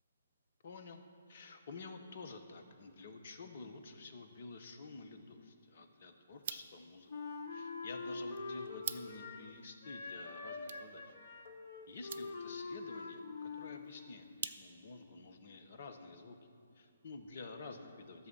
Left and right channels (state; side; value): inverted; both; correlation -0.73